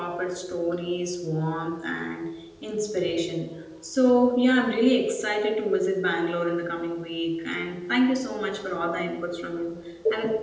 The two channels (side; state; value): both; identical; correlation 1.00